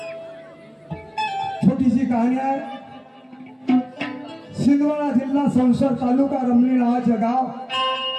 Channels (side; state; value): both; identical; correlation 1.00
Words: छोटीशी कहाणी आहे. सिंदवाडा जिल्हा संसद तालुका रमणी नावाचे गाव,